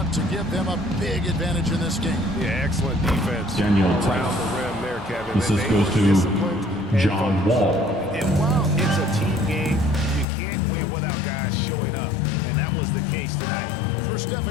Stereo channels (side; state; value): right; drops out; at 10.2 s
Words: to give them a big advantage in this game. Yeah, excellent defense Daniel around Tice. the rim there, Kevin. This goes to John Wall. And while it's a team game, you can't win without guys showing up. And that was the case tonight. For